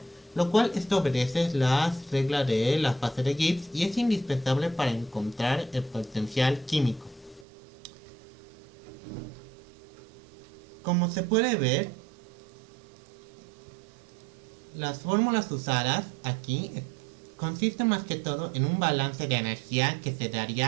lo cual esto obedece las reglas de la fase de Gibbs y es indispensable para encontrar el potencial químico. Como se puede ver, las fórmulas usadas aquí consisten más que todo en un balance de energía que se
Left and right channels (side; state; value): left; drops out; at 7.5 s